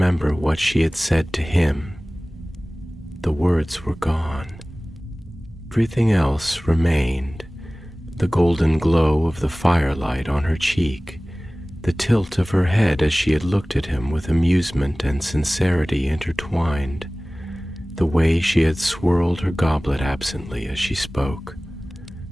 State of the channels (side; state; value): both; normal; correlation 0.98